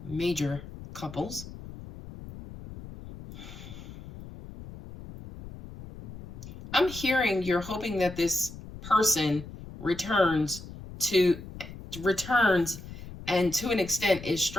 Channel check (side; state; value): left; noise; rumble, 14 dB below the sound